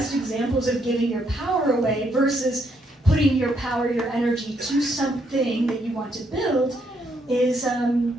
examples of giving your power away versus putting your power, your energy to something that you want to build is, oh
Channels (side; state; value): both; normal; correlation 0.74